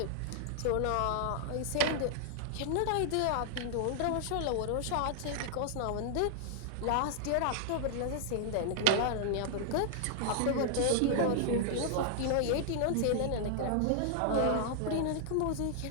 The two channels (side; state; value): both; different; correlation -0.01